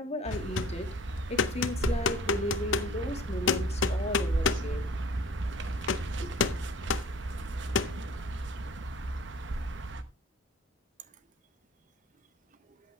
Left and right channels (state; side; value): normal; both; correlation 0.47